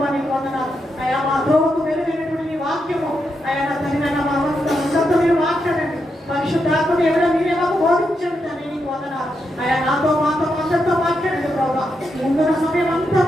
నీకు వందనాలు. అయా మా ద్రోహకు వెలువైనటువంటి నీ వాక్యము, అయా నా తండ్రి నాయన మా మనసుతో మీరు మాట్లాడండి. పరిశుద్ధాత్మ దేవుడా మీరే మాకు బోధించండి తండ్రి నీకు వందనాలు. అయా నాతో మాతో అందరితో మాట్లాడండి ప్రభావ. ముందున్న సమయం అంతా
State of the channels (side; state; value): both; normal; correlation 0.83